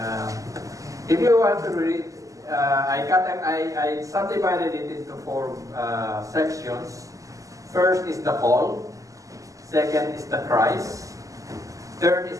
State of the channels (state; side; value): late; left; 0.16 ms